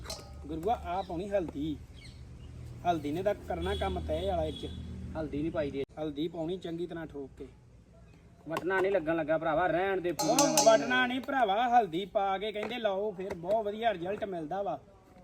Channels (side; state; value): both; identical; correlation 1.00